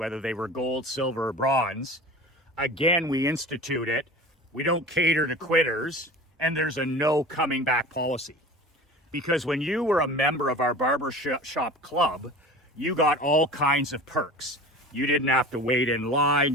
they were gold, silver, or bronze, again, we institute it. We don't cater to quitters, and there's a no coming back policy. Because when you were a member of our barbershop club, you got all kinds of perks. You didn't have to wait in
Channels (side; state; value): both; normal; correlation 0.37